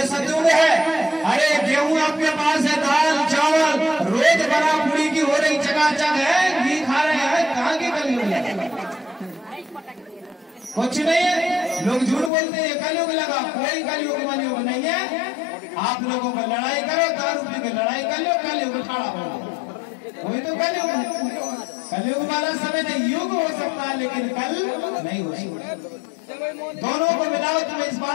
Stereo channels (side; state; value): right; drops out; at 12.3 s